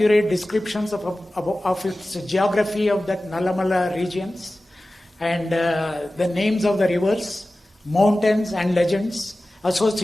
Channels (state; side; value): normal; both; correlation 0.96